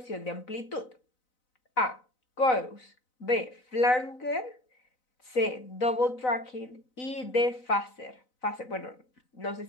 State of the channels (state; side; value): late; right; 4.0 ms